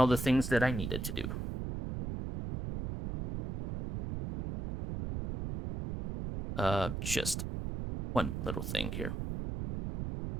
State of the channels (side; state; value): right; noise; rumble, 5 dB below the sound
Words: the things that I needed to do. Just one little thing here